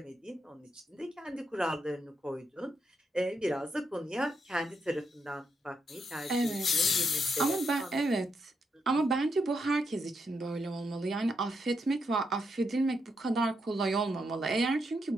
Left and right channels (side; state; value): both; normal; correlation 0.80